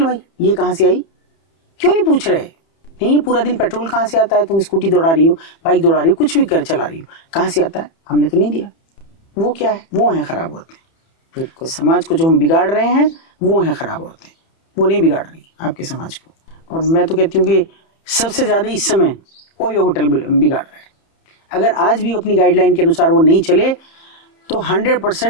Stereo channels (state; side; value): late; right; 30 ms